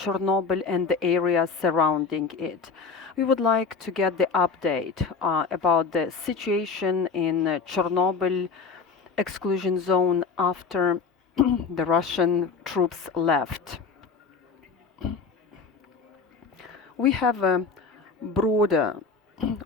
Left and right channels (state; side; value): quieter; right; 5.0 dB